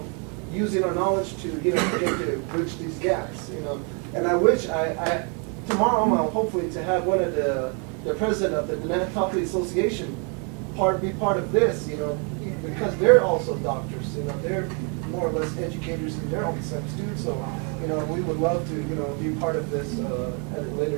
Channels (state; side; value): quieter; left; 37.1 dB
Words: using our knowledge to, begin to bridge these gaps, And I wish tomorrow I'm hopefully to have one of the president of the Navajo Association be part of this, because they're also doctors, they're more or less educators in their own sense too. So, we would love to, be part of this at a later